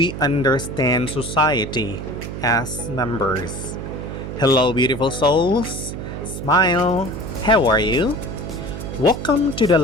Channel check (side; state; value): right; noise; hum, 7 dB below the sound